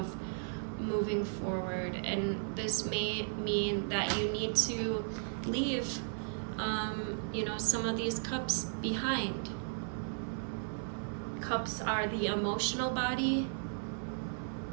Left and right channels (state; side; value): silent; left; 54 dB below the other